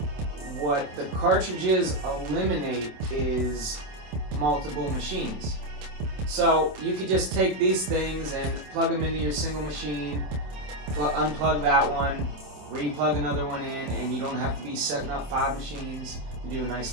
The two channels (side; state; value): left; late; 27 ms